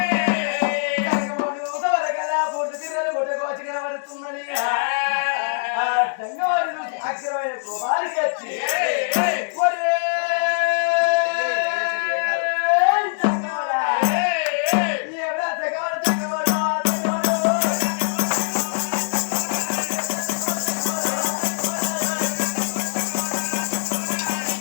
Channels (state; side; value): silent; right; digital silence